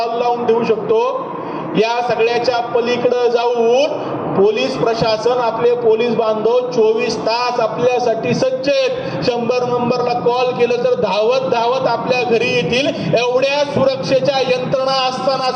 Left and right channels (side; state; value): both; identical; correlation 1.00